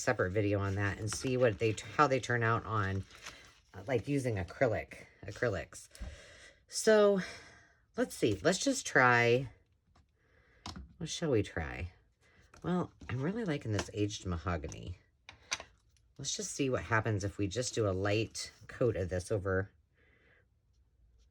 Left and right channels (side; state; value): both; identical; correlation 1.00